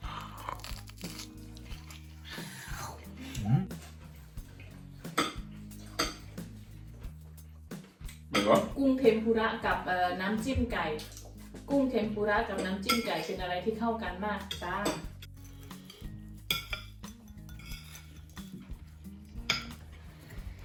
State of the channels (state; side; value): identical; both; correlation 1.00